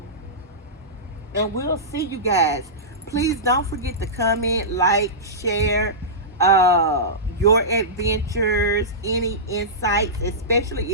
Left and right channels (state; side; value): normal; both; correlation -0.17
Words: And we'll see you guys. Please don't forget to comment, like, share your adventures, any insights, especially